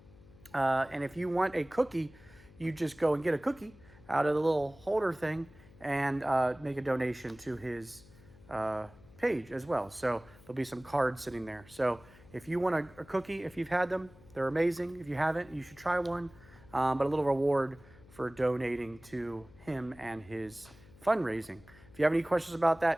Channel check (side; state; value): left; noise; hum, 23 dB below the sound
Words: And if you want a cookie, you just go and get a cookie out of the little holder thing and make a donation to his page as well. So there'll be some cards sitting there. So if you want a cookie, if you've had them, they're amazing. If you haven't, you should try one. But a little reward for donating to him and his fundraising. If you have any questions about